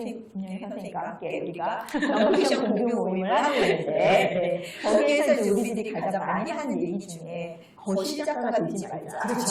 선생님과 함께 우리가 넌픽션 공유 모임을 하고 있는데 거기에서 이제 우리들이 가장 많이 하는 얘기 중에 거실 작가가 되지 말자.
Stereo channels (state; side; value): identical; both; correlation 1.00